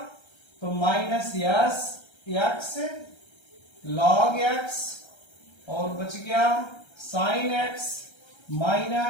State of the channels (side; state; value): right; late; 1.3 ms